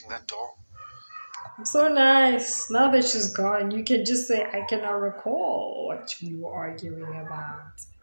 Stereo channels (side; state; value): both; inverted; correlation -1.00